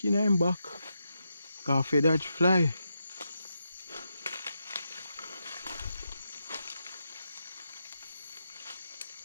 in him back. Cause that fly.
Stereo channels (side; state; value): both; inverted; correlation -0.85